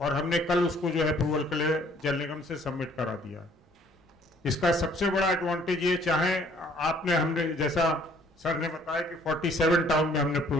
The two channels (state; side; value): normal; both; correlation 0.59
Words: हमने कल उसको जो है अप्रूवल के लिए जल निगम से सबमिट करा दिया। इसका सबसे बड़ा एडवांटेज ये, चाहे आपने हमने जैसा सर ने बताया कि 47 टाउन में हमने